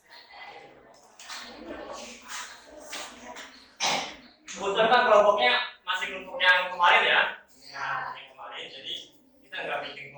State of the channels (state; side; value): identical; both; correlation 1.00